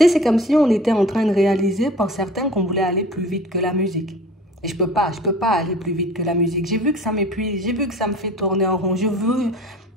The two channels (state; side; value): normal; both; correlation 0.44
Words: sais, c'est comme si on était en train de réaliser pour certains qu'on voulait aller plus vite que la musique. Et je peux pas aller plus vite que la musique. J'ai vu que ça m'épuise, j'ai vu que ça me fait tourner en rond. Je veux,